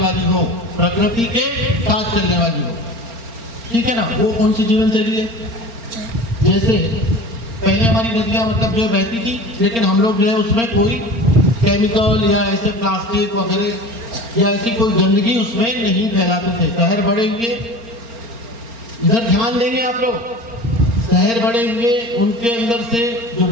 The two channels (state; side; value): late; left; 4.4 ms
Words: हो, प्रकृति के साथ चलने वाली हो, ठीक है ना। वो कौन सी जीवन शैली है? जैसे पहले हमारी नदियाँ मतलब जो बहती थी, लेकिन हम लोग जो है उसमें कोई केमिकल या ऐसे प्लास्टिक वगैरह या ऐसी कोई गंदगी उसमें नहीं फैलाते थे। शहर बड़े हुए, इधर ध्यान देंगे आप लोग, शहर बड़े हुए, उनके अंदर से जो